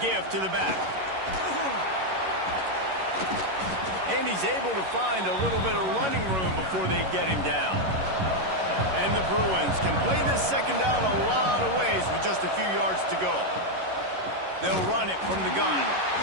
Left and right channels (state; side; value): late; left; 11 ms